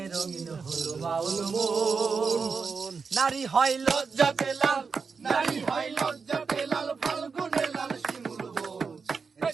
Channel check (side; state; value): left; quieter; 5.2 dB